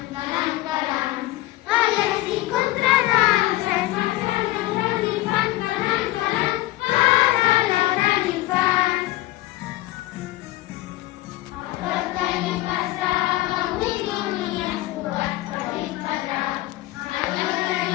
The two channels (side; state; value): right; quieter; 17.3 dB